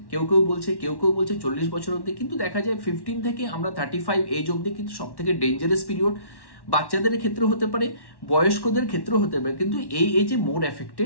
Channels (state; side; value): late; right; 1.1 ms